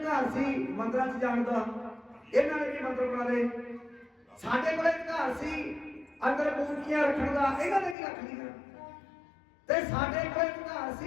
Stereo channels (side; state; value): right; drops out; at 8.0 s